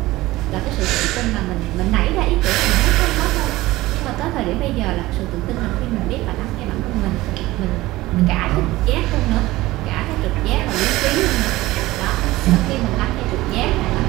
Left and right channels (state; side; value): quieter; left; 18.2 dB